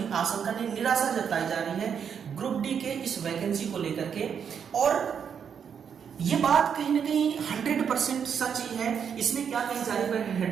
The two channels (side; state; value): left; quieter; 7.4 dB